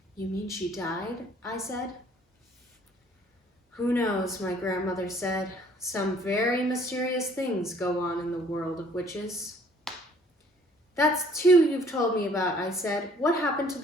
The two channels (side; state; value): both; normal; correlation 0.58